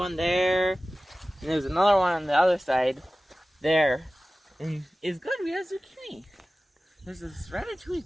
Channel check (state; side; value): normal; both; correlation 0.97